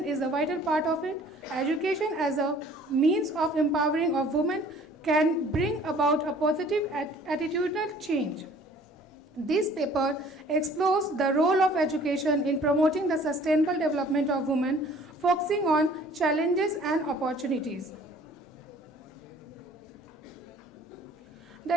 is a vital part of it. Education as a means of empowering of women can bring about a positive attitudinal change. This paper explores the role of education in promoting the sustainable development of women, focusing on challenges and opportunities.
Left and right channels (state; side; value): normal; both; correlation 0.53